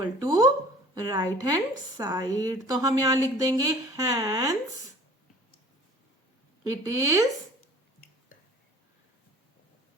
to right hand side. तो हम यहां लिख देंगे hence it is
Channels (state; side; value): normal; both; correlation 0.48